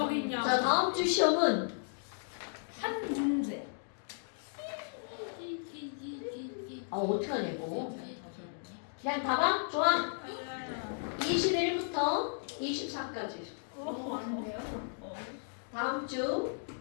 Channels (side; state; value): right; silent; digital silence